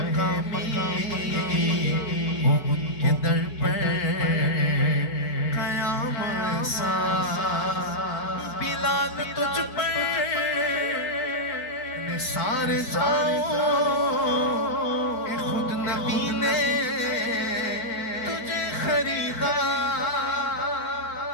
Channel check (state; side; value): late; right; 4.7 ms